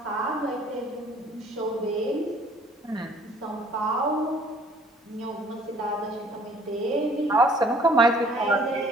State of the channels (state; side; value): normal; both; correlation 0.56